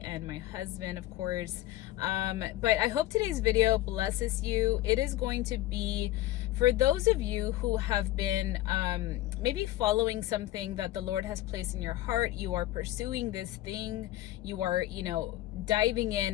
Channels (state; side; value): quieter; right; 15.7 dB